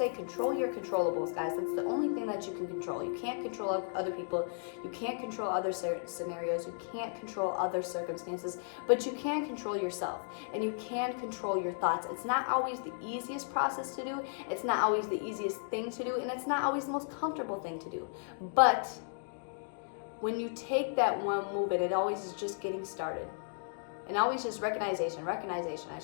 control your controllables, guys. That's the only thing that you can control. You can't control other people. You can't control other scenarios. You can't control other circumstances, but you can control yourself, and you can control your thoughts. It's not always the easiest process to do. It's not always the easiest thing to do, and it's not always the most comfortable thing to do. But when you take that one move, and it always is just getting started. And always just recognition, I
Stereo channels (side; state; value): right; silent; digital silence